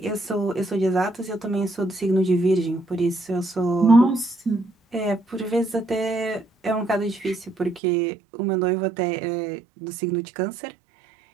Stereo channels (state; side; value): drops out; left; at 7.8 s